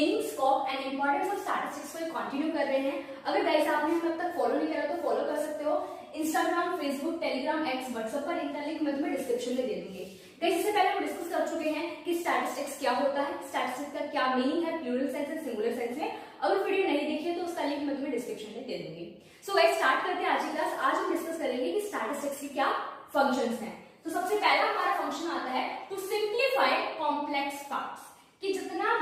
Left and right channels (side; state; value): both; identical; correlation 1.00